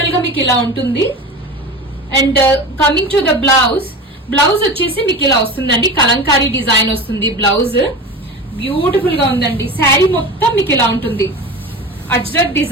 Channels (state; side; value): normal; both; correlation 0.30